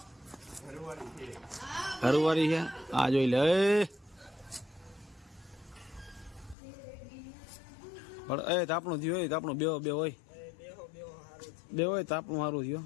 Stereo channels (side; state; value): right; drops out; at 6.6 s